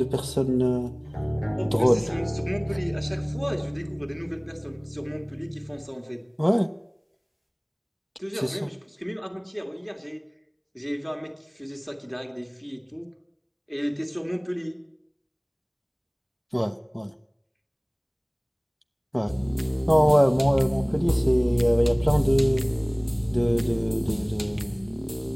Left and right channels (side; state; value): both; identical; correlation 1.00